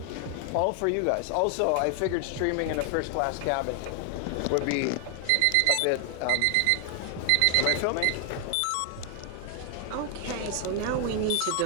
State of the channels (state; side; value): different; both; correlation 0.00